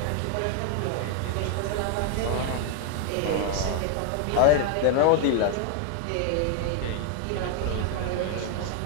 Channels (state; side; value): different; both; correlation 0.00